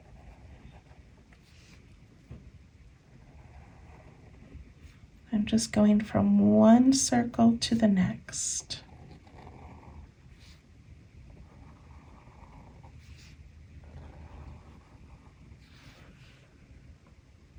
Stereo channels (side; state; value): both; identical; correlation 1.00